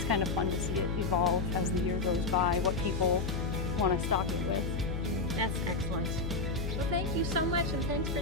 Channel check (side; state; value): left; noise; hum, 2 dB below the sound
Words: kind of fun to see it evolve as the year goes by, what people want to stock it with. That's excellent. thank you so much, and thanks for